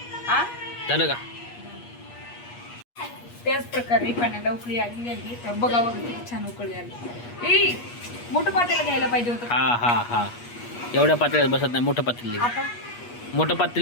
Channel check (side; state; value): right; late; 8.3 ms